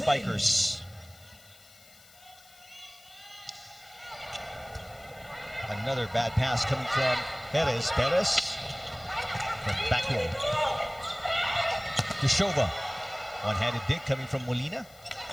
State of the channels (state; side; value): noise; left; hiss, 24 dB below the sound